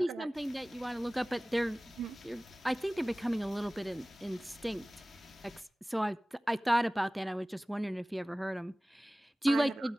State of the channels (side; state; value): both; normal; correlation 0.98